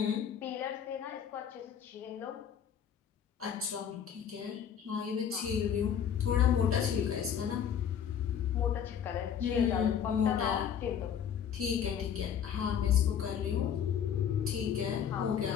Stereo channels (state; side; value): quieter; right; 8.4 dB